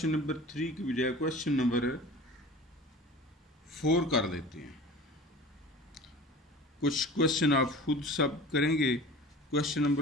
नंबर 3 की बजाय क्वेश्चन नंबर 4 कर लेते हैं। कुछ क्वेश्चन आप खुद सब करेंगे। क्वेश्चन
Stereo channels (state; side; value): normal; both; correlation 0.40